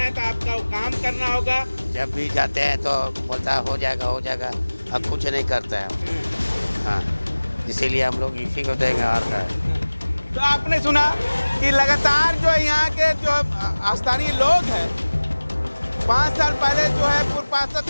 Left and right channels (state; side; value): inverted; both; correlation -1.00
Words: तो आपका काम करना होगा। जब भी जाते हैं तो बोलता है हो जाएगा हो जाएगा, अब कुछ नहीं करता है। हाँ, इसीलिए हम लोग इसी को देंगे, हार का है। तो आपने सुना कि लगातार जो यहाँ के जो स्थानीय लोग हैं, 5 साल पहले जो है पूर्व पार्षद